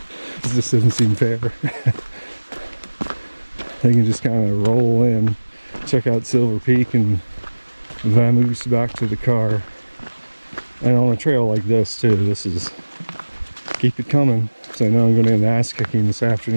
This just doesn't seem fair. They can just kind of roll in, check out Silver Peak, and vamoose back to the car. And on a trail like this too, this is, keep it coming. So I know I'm going to get an ass kicking this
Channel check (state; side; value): inverted; both; correlation -1.00